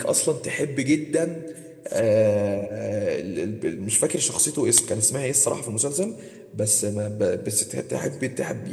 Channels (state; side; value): identical; both; correlation 1.00